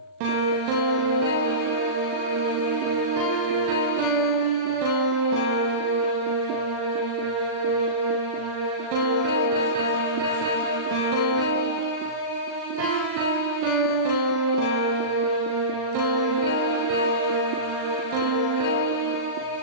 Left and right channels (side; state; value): left; late; 39 ms